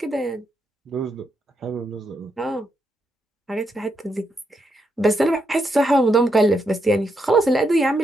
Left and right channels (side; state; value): both; normal; correlation 0.80